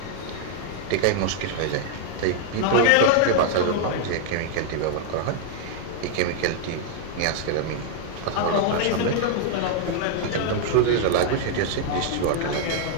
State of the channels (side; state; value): both; different; correlation 0.00